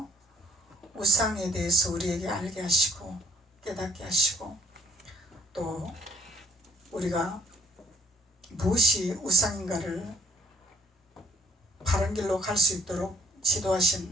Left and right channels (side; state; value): both; normal; correlation 0.60